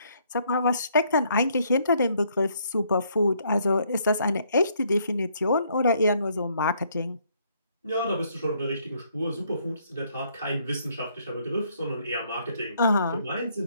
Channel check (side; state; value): both; inverted; correlation -0.69